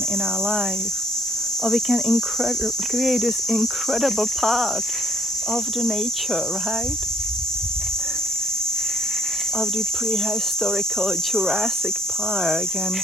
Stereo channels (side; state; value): both; normal; correlation 0.64